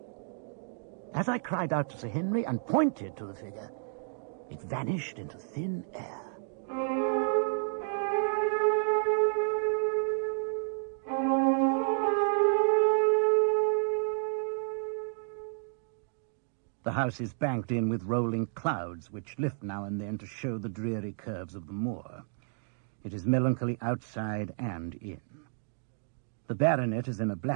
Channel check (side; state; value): left; silent; digital silence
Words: As I cried out to Sir Henry and pointed to the figure, it vanished into thin air. The house is banked in with rolling clouds, which lift now and then to show the dreary curves of the moor. It is melancholy outside and in. The baronet is in a